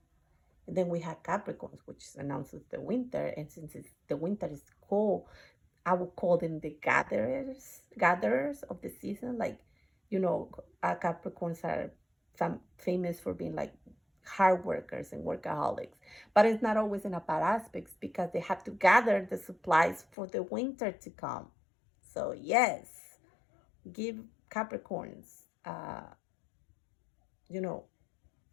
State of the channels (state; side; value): drops out; right; at 20.1 s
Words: And then we have Capricorns, which announces the winter. And since the winter is cold, I would call them the gatherers of the season. Like, Capricorns are famous for being like hard workers and workaholics. But it's not always in a bad aspects because they have to gather the supplies for the winter to come. So yes, give Capricorns, you know,